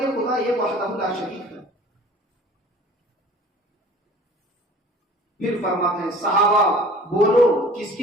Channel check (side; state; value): both; normal; correlation 0.46